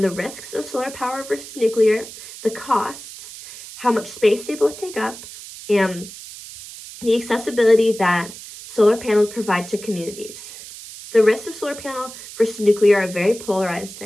the risks of solar power versus nuclear, the costs, how much space they both take up, and the accessibility that solar panels provide to communities. The risks of solar panel versus nuclear are very polarized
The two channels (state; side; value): noise; right; hiss, 14 dB below the sound